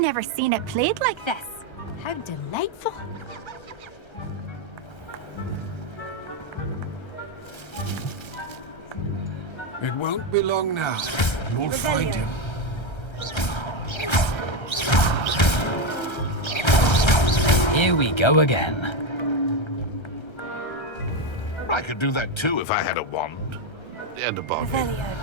seen it played like this. How delightful. It won't be long now. You'll find him. Here we go again. I could do that too if I had a wand. And a body. Revelio.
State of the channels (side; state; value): right; late; 1.3 ms